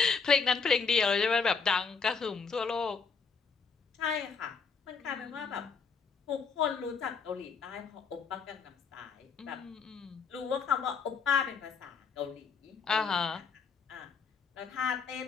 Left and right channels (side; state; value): right; quieter; 5.4 dB